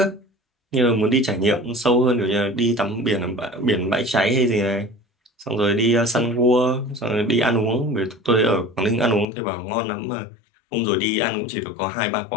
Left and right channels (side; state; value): right; drops out; at 9.2 s